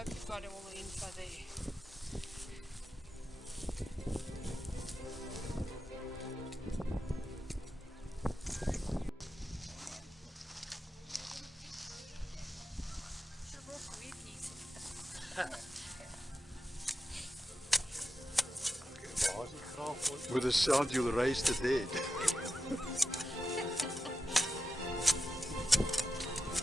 you've got all the info there. With a sound you'll raise the dead.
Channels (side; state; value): both; normal; correlation 0.90